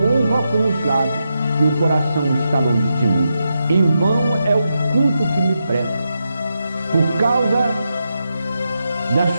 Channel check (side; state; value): both; inverted; correlation -0.86